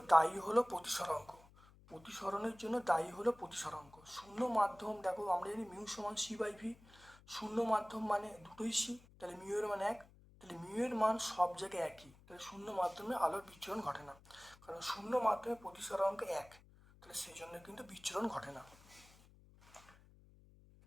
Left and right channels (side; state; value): left; noise; hum, 24 dB below the sound